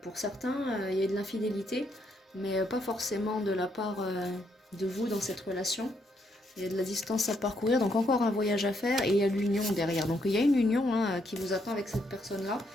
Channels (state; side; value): normal; both; correlation 0.75